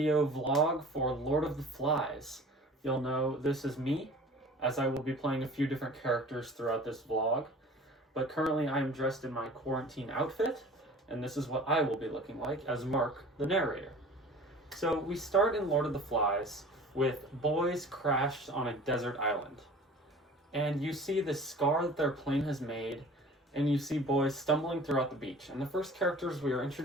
vlog for Lord of the Flies. You'll know this is me, as I will be playing a few different characters throughout this vlog. But currently I am dressed in my quarantine outfit, and this is what I will be looking like as Mark, the narrator. So we start in Lord of the Flies with boys crashed on a desert island. And you see the scar that their plane has made, and you see boys stumbling throughout the beach. And the first characters we are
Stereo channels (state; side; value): normal; both; correlation 0.44